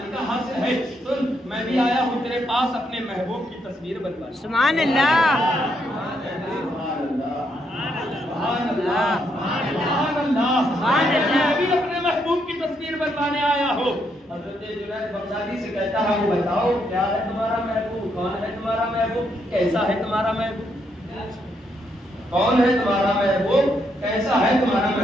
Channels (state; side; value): normal; both; correlation 0.76